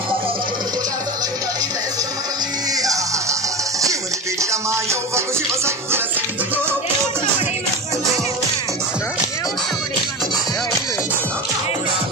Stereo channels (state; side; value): normal; both; correlation 0.25